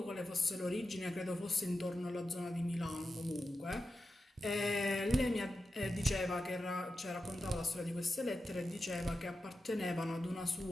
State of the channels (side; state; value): both; normal; correlation 0.91